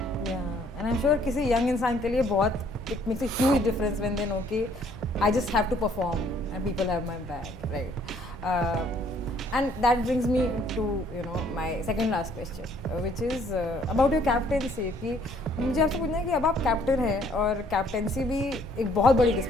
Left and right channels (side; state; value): both; normal; correlation 0.63